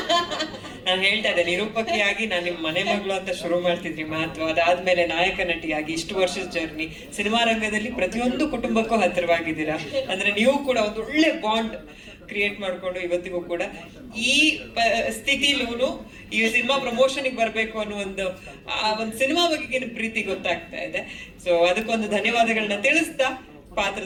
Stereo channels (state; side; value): identical; both; correlation 1.00